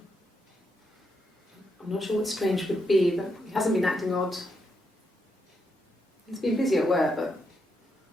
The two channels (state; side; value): normal; both; correlation 0.81